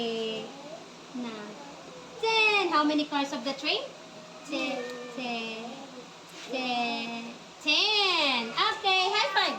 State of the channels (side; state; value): both; identical; correlation 1.00